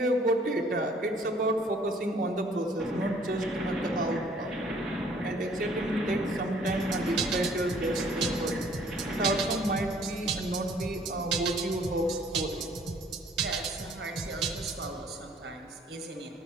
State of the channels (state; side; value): normal; both; correlation 0.58